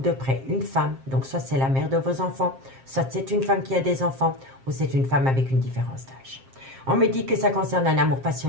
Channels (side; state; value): left; late; 7.5 ms